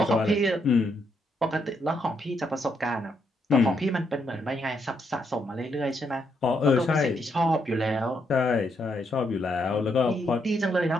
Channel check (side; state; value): both; normal; correlation 0.77